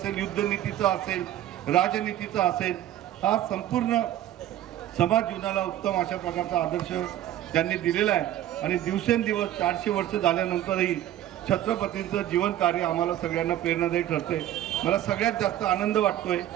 युद्धनीतीचं असेल, राजनीतीचं असेल, हा संपूर्ण समाज जीवनाला उत्तम अशा प्रकारचा आदर्श त्यांनी दिलेला आहे. आणि दिवसेंदिवस 400 वर्ष झाल्यानंतरही छत्रपतींचं जीवन कार्य आम्हाला सगळ्यांना प्रेरणादायी ठरते. मला सगळ्यात जास्त आनंद वाटतोय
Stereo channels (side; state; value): left; quieter; 12.6 dB